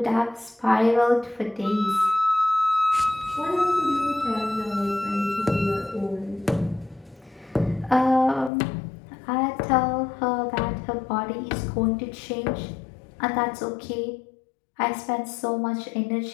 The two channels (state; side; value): drops out; right; at 8.5 s